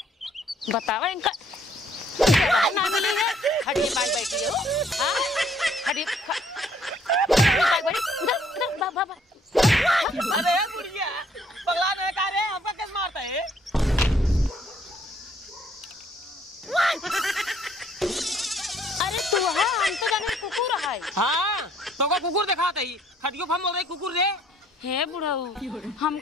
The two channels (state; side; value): normal; both; correlation 0.64